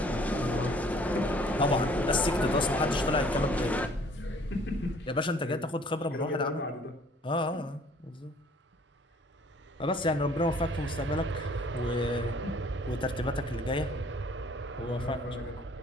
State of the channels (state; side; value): normal; both; correlation 0.56